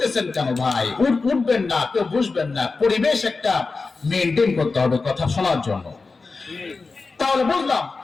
কেন ভাই? উঠবেন না, কেউ বুঝবেন না। পরিবেশ একটা মেনটেন করতে হবে কথা শোনার জন্য। তাহলে বুঝলাম,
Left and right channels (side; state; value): right; quieter; 4.1 dB